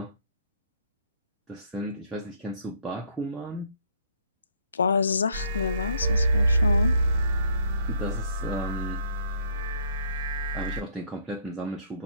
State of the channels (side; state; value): both; inverted; correlation -0.62